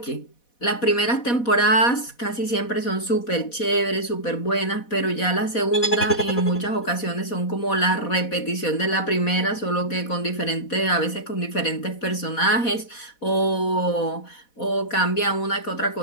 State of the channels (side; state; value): right; late; 4.1 ms